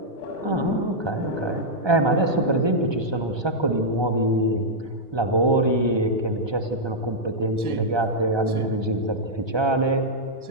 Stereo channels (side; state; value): left; late; 1.3 ms